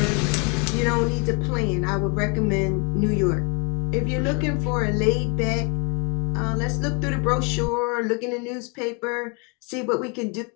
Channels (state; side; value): quieter; right; 33.6 dB